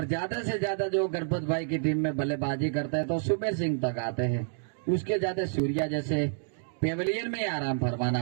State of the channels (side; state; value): left; silent; digital silence